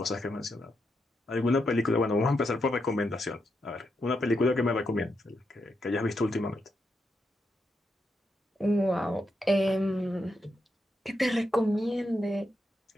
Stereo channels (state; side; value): normal; both; correlation 0.83